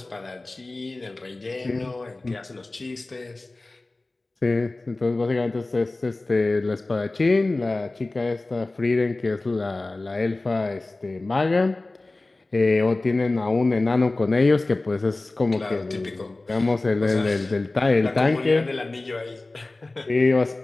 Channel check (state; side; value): quieter; right; 3.0 dB